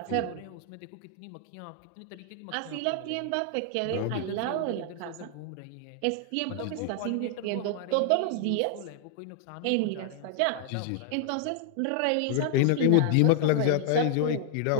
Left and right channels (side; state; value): both; different; correlation 0.00